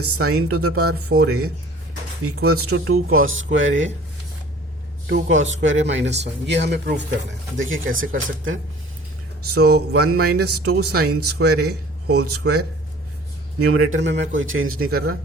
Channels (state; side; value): normal; both; correlation 0.49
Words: sine to the power 4a equals to 2 cos square a 2 cos square a minus 1. ये हमें prove करना है. देखिए कैसे कर सकते हैं. So 1 minus 2 sin square a whole square, numerator में मैं कोई चेंज नहीं कर रहा,